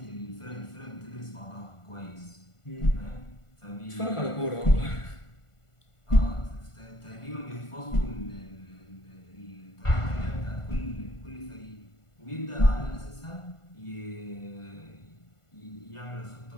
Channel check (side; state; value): right; late; 1.5 ms